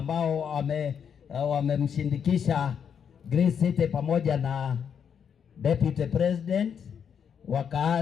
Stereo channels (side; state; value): right; quieter; 7.6 dB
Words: wamemshindikisha Grace City pamoja na Deputy President,